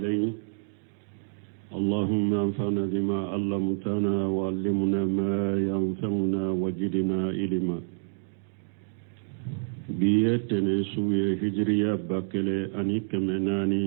اللهم انفعنا بما علمتنا وعلمنا ما ينفعنا وزدنا علما. بيتنا سوية هجرية باكلة أني كمناني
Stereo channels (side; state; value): left; silent; digital silence